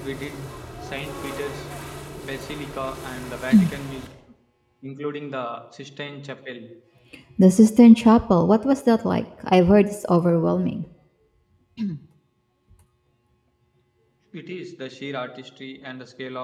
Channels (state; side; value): identical; both; correlation 1.00